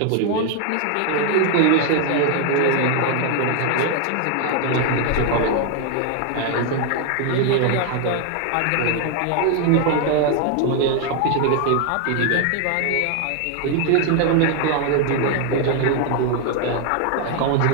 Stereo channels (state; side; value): different; both; correlation 0.00